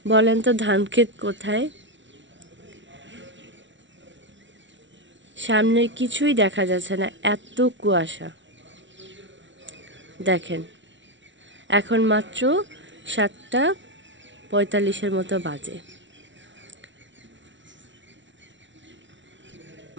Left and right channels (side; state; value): left; late; 0.55 ms